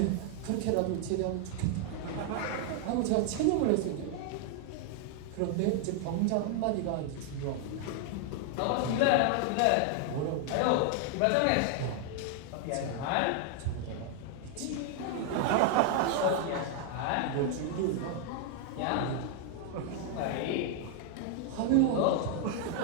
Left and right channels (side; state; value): both; different; correlation 0.00